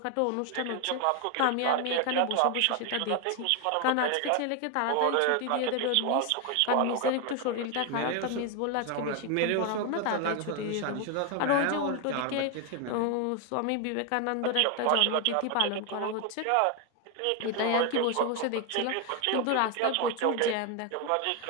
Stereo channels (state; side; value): different; both; correlation 0.01